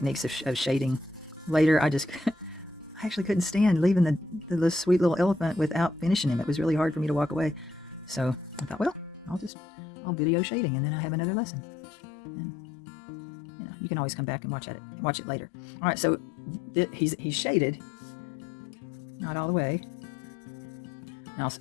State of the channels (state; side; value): drops out; right; at 9.5 s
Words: of shading later. I actually couldn't stand leaving the sweet little elephant without finishing him. It was really hard for me to walk away. So I thought, well, I'll video shading, and then I have another lesson. And you can always come back and watch it later. All right, so he's shaded, not all the way. And I'll